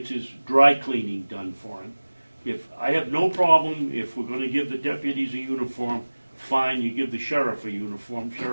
his dry cleaning done for him. I have no problem if we're going to give the deputies a uniform, fine, you give the sheriff a uniform.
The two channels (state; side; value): inverted; both; correlation -1.00